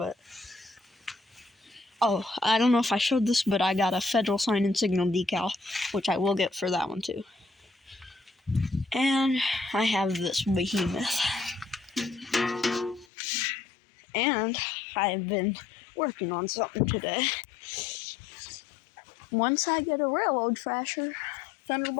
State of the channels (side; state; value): right; drops out; at 13.1 s